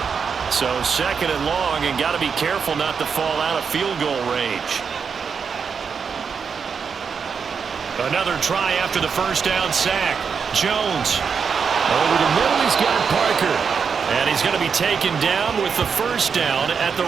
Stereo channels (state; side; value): quieter; left; 6.1 dB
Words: So 2nd and long, and got to be careful not to fall out of field goal range. Another try after the 1st down sack. Jones. Over the middle, he's got Parker. And he's going to be taken down with the 1st down at the